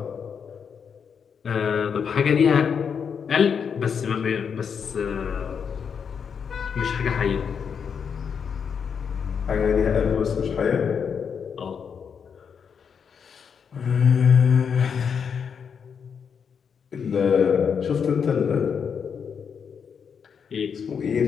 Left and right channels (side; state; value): right; quieter; 6.8 dB